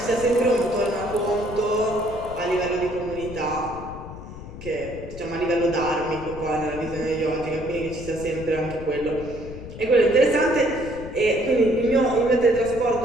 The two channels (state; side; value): noise; left; rumble, 12 dB below the sound